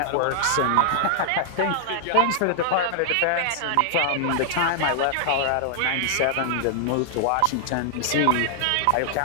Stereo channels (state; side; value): different; both; correlation -0.01